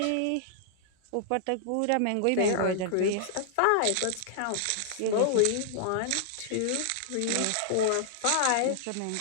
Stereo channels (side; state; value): both; different; correlation -0.01